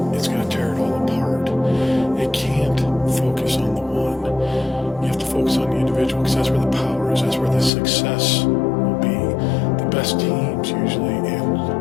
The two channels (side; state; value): right; drops out; at 7.7 s